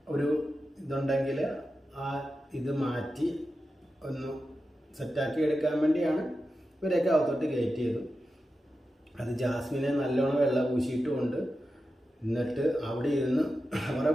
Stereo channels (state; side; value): normal; both; correlation 0.91